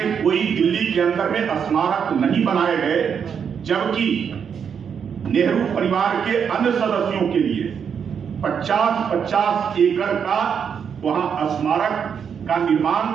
कोई दिल्ली के अंदर में स्मारक नहीं बनाए गए, जबकि नेहरू परिवार के अन्य सदस्यों के लिए 50-50 एकड़ का वहां स्मारक का निर्माण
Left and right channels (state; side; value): quieter; left; 7.2 dB